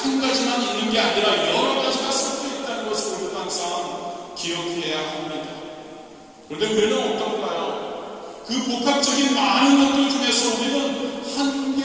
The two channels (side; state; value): both; identical; correlation 1.00